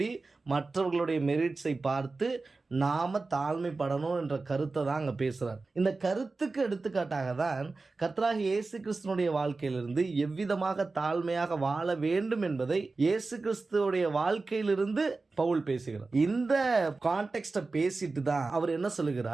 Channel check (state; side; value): quieter; left; 3.7 dB